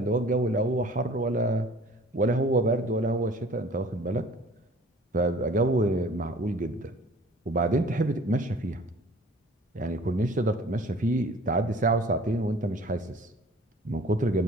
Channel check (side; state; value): both; normal; correlation 0.49